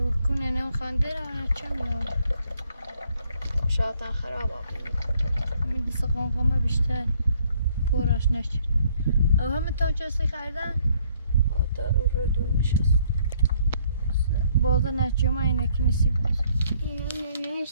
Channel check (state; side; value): inverted; both; correlation -0.65